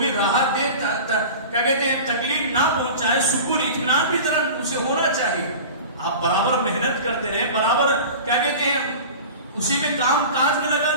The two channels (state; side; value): inverted; both; correlation -0.36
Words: راحت دے، کیا کہتے ہیں تکلیف نہ پہنچائے، سکون اطمینان بھی ذرا اسے ہونا چاہیے. آپ برابر محنت کرتے رہے، برابر کیا کہتے ہیں اسی میں کام کاج میں لگا